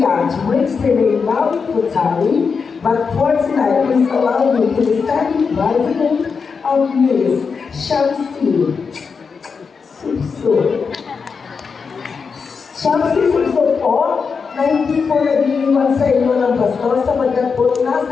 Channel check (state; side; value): quieter; right; 5.4 dB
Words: Twixton Maui Futari, but for tonight, please allow me to be standing by the name of Miss Shamsi Subso. Shamsi Subso po, na hindi po nag-iiwan sa inyo ng bastos sapagkat po